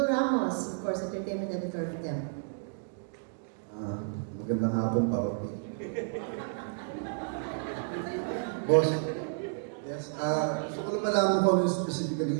Ramos, of course, entertainment editor for them. Magandang hapon, Papa P. Boss, yes, gusto ko lang malaman kung ano specifically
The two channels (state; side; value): silent; left; digital silence